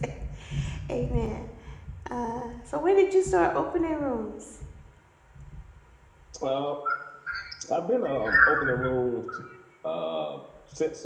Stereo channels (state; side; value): identical; both; correlation 1.00